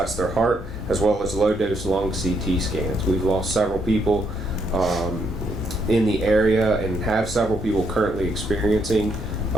their heart, as well as low-dose lung CT scans. We've lost several people in the area and have several people currently experiencing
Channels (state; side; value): normal; both; correlation 0.75